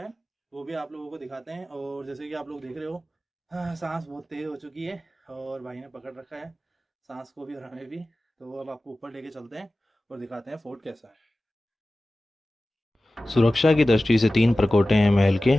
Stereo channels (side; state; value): both; normal; correlation 0.96